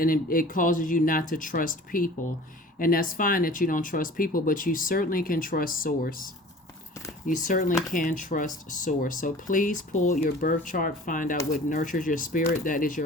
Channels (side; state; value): both; normal; correlation 0.44